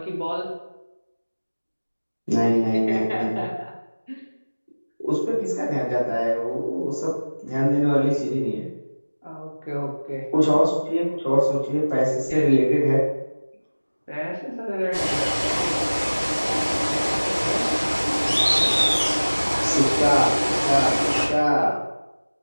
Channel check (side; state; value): both; inverted; correlation -1.00